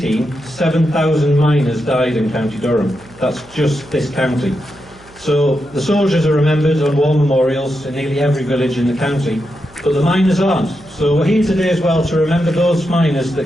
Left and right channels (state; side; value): noise; right; hum, 26 dB below the sound